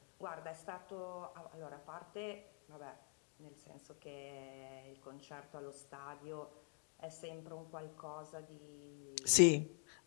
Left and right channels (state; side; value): quieter; right; 39.8 dB